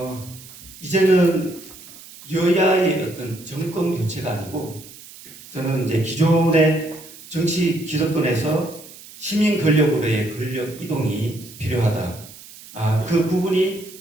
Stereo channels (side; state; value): right; noise; hiss, 18 dB below the sound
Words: 이제는 여야의 어떤 정권 교체가 아니고 저는 이제 기존의 정치 기득권에서 시민 권력으로의 권력 이동이 필요하다. 그 부분이